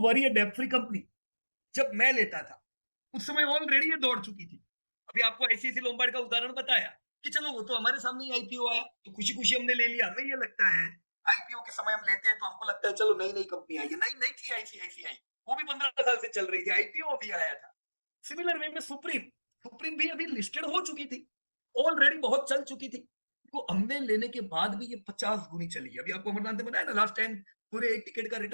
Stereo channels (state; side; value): inverted; both; correlation -1.00